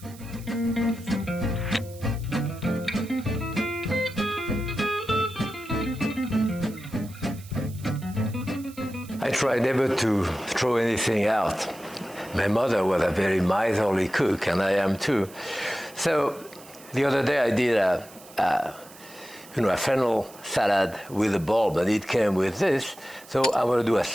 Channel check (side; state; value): right; noise; hiss, 21 dB below the sound